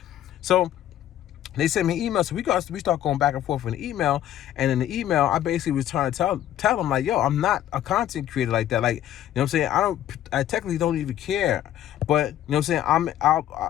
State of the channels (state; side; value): quieter; right; 11.8 dB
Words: So they sent me emails. So we start going back and forth in the email. And in the email, I basically was trying to tell them, like, yo, I'm not a content creator like that. Like, what I'm saying? I technically don't even care. But, what I'm saying?